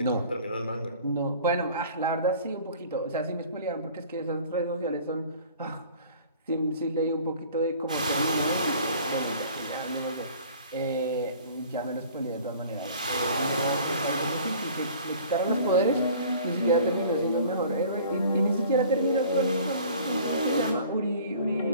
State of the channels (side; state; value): both; inverted; correlation -0.48